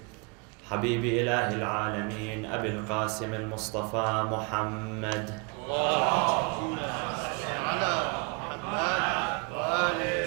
حبيب إله العالمين أبي القاسم المصطفى محمد.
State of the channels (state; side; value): quieter; left; 33.5 dB